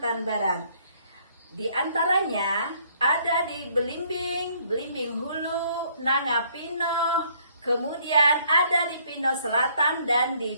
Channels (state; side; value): inverted; both; correlation -0.64